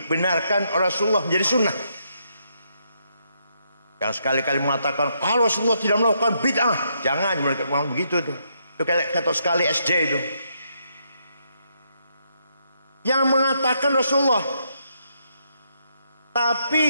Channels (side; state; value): both; inverted; correlation -0.77